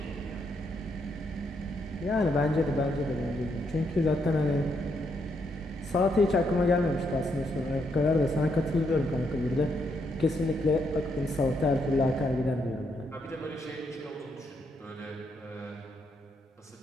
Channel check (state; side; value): normal; both; correlation 0.77